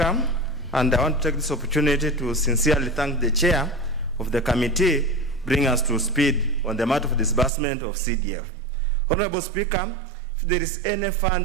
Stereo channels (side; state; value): left; drops out; at 7.5 s